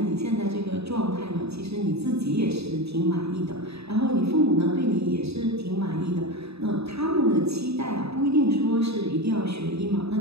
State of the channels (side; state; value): left; late; 0.78 ms